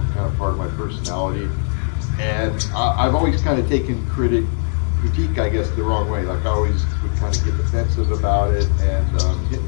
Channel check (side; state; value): right; silent; 57 dB below the other